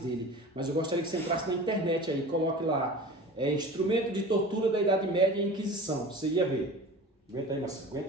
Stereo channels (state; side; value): normal; both; correlation 0.37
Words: mas eu gostaria que você entrasse na internet aí, coloque lá, instrumento de tortura da Idade Média e Inquisição, você ia ver. Aguenta aí, Marcelo,